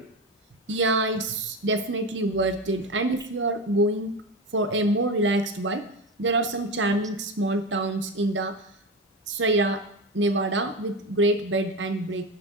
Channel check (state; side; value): normal; both; correlation 0.20